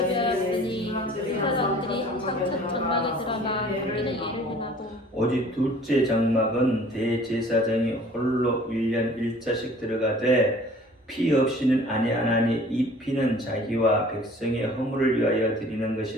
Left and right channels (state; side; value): normal; both; correlation 0.50